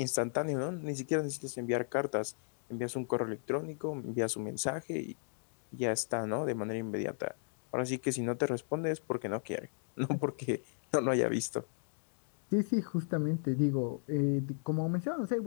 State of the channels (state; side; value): silent; right; digital silence